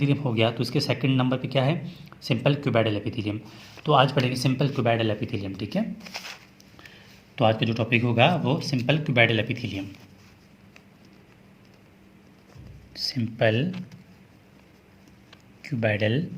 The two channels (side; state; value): both; identical; correlation 1.00